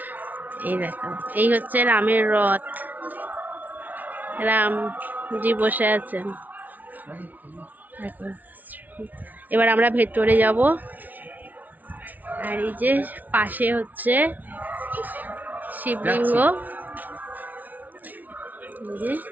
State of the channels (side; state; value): left; late; 0.079 ms